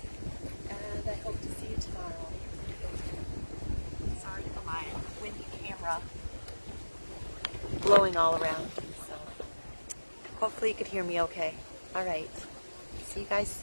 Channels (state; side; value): inverted; both; correlation -1.00